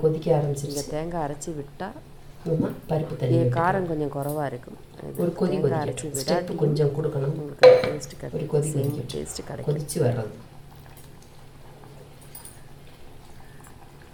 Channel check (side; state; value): both; identical; correlation 1.00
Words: கொதிக்க ஆரம்பிச்சு இங்கே தேங்காய் அரைச்சி விட்டால் பருப்பு தண்ணி காரம் கொஞ்சம் குறவாக இருக்கும். ஒரு கொதி அரைச்சி விடாட்டி கொஞ்சம் கொடுக்கணும். உங்களுக்கு டேஸ்ட்டு கிடைக்கும். கொதி டேஸ்ட்டு கிடைக்கும். கொதிச்சு வர்றது